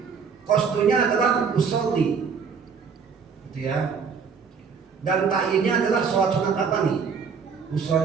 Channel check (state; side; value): quieter; left; 6.0 dB